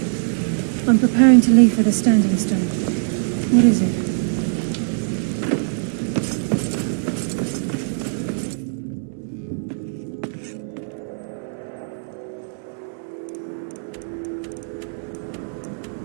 I'm preparing to leave for the standing stone. What is it?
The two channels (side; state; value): left; silent; 64 dB below the other